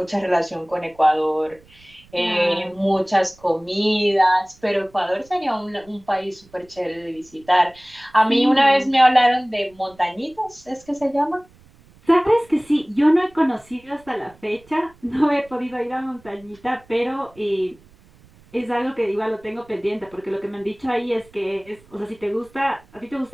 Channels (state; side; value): noise; right; rumble, 28 dB below the sound